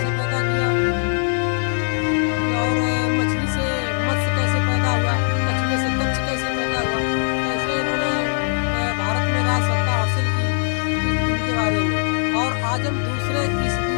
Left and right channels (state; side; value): silent; right; digital silence